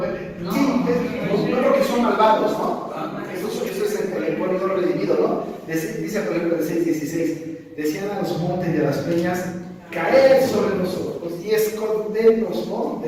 sí, no porque son malvados, ¿no? Eso es el pueblo no redimido, ¿no? Dice, por ejemplo, el 6:16, decían a los montes y a las peñas: caed sobre nosotros y escondernos, ¿no?,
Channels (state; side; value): identical; both; correlation 1.00